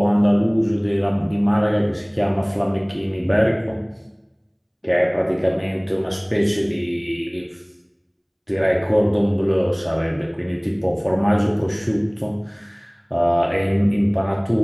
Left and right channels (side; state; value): both; identical; correlation 1.00